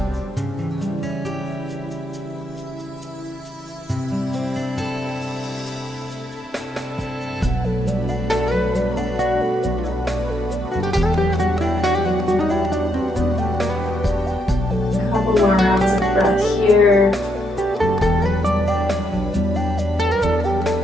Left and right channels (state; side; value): normal; both; correlation 0.78